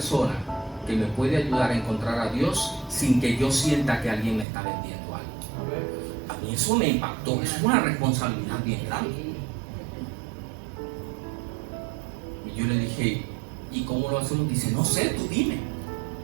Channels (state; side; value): drops out; left; at 4.5 s